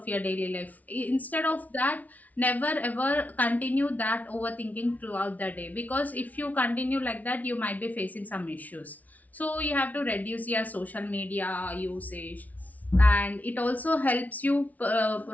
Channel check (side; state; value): right; late; 0.073 ms